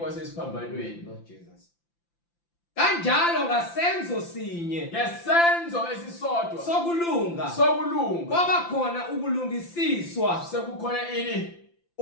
Lord Jesus. Kanjalo ngasenzo sinye Ngesenzo esisodwa sokulunga kwaba khona ukulungisiswa sekukhona ini?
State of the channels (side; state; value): right; late; 5.9 ms